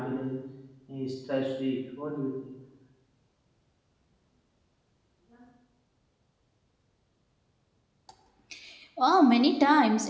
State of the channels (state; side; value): identical; both; correlation 1.00